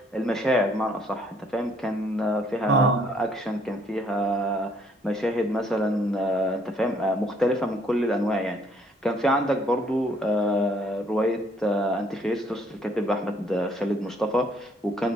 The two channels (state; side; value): normal; both; correlation 0.65